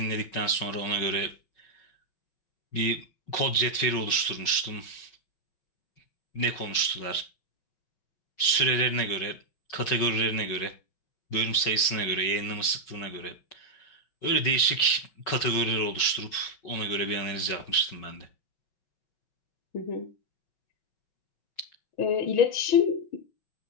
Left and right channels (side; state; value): right; late; 5.4 ms